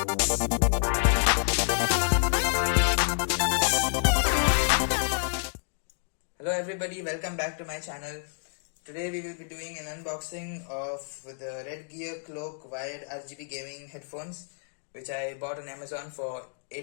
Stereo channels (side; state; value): right; silent; digital silence